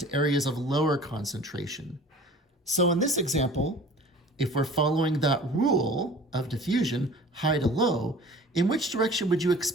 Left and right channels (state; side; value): normal; both; correlation 0.45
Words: areas of lower concentration. So in this example, if we're following that rule of diffusion, high to low, in which direction would you